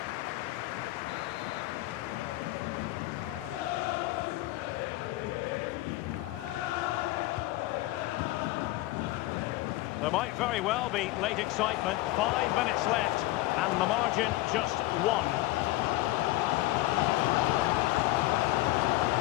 There might very well be late excitement. 5 minutes left, and the margin just 1.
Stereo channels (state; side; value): quieter; right; 18.0 dB